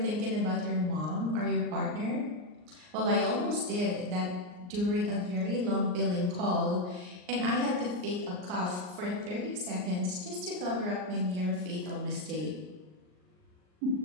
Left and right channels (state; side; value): late; left; 39 ms